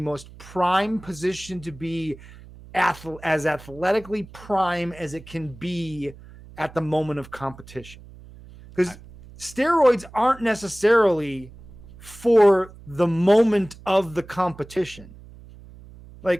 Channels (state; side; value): noise; right; hum, 19 dB below the sound